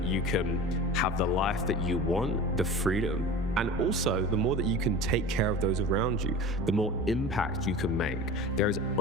you can have the life that you want, the freedom, and also the more that you can take care of those around you, the more impact you can make. There is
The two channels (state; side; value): normal; both; correlation 0.35